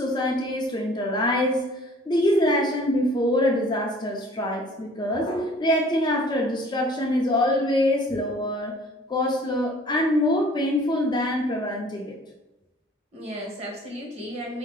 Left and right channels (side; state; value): both; normal; correlation 0.52